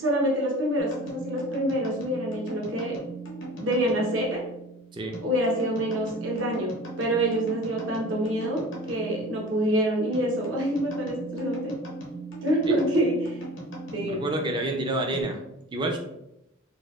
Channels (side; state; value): both; normal; correlation 0.40